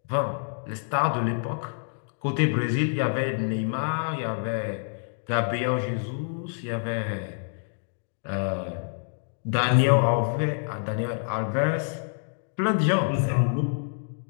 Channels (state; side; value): silent; right; digital silence